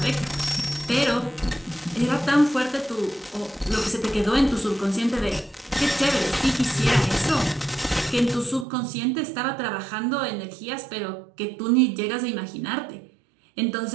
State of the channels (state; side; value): drops out; left; at 8.7 s